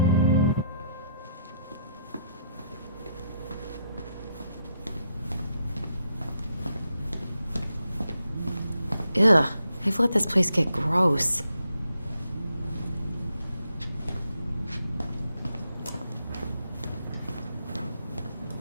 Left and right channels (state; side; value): inverted; both; correlation -0.76